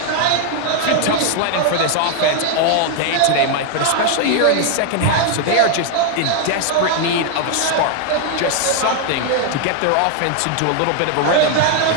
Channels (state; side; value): different; both; correlation 0.00